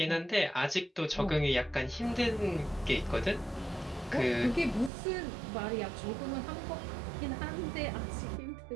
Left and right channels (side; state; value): left; drops out; at 4.9 s